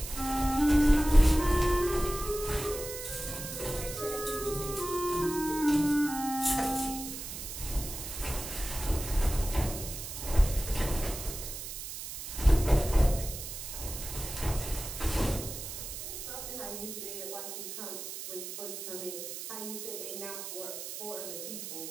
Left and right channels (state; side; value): noise; right; hiss, 8 dB below the sound